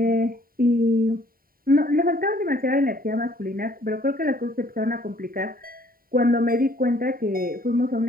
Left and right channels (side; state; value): left; late; 0.43 ms